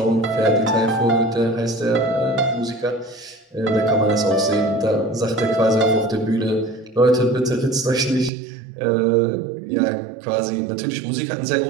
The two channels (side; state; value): left; drops out; at 8.3 s